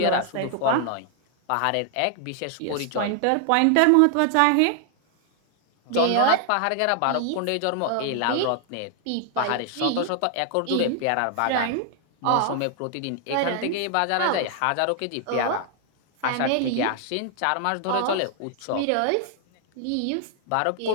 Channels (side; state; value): both; different; correlation 0.00